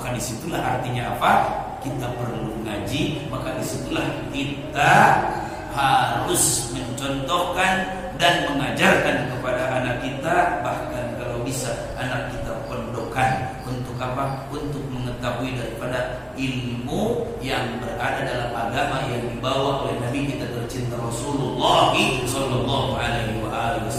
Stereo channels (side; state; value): both; identical; correlation 1.00